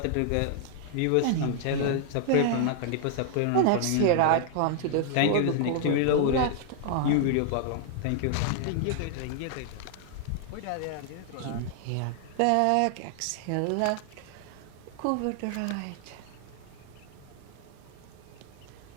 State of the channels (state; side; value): different; both; correlation 0.00